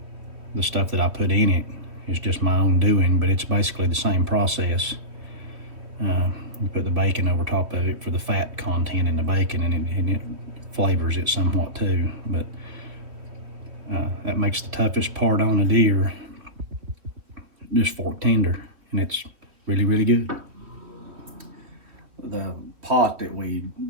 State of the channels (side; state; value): left; late; 3.0 ms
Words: the stuff that I put in it is just my own doing, but it's basically the same process. You put the bacon over top of it for the fat content in the bacon, and it flavors it somewhat too. But that makes the toughest part on a deer just fork tender, and it's really, really good. The pot that we